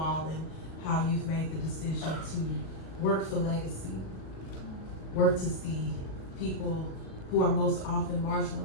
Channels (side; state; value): right; late; 37 ms